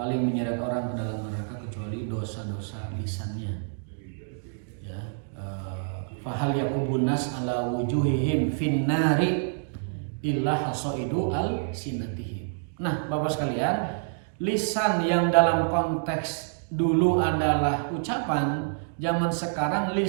menyeret orang ke dalam neraka kecuali dosa-dosa lisannya. Ya, fahal yakubun nas ala wujuhihim finnari illa hasaidu al sinatihim. Nah, Bapak sekalian, lisan yang dalam konteks dulu adalah ucapan, zaman sekarang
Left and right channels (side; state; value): left; silent; digital silence